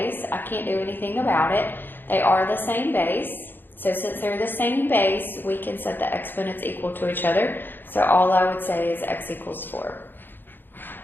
I can't do anything about it. They are the same base. So since they're the same base, we can set the exponents equal to each other. So all I would say is x equals 4.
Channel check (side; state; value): right; late; 0.096 ms